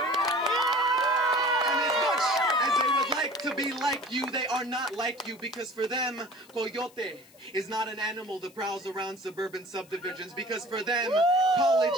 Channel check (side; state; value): left; noise; hiss, 27 dB below the sound